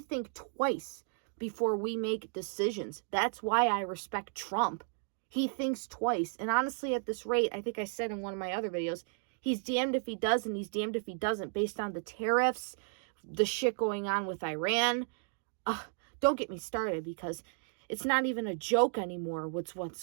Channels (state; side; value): silent; left; 55 dB below the other